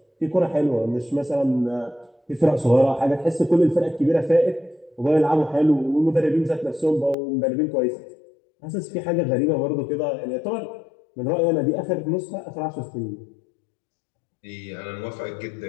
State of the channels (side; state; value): right; drops out; at 7.2 s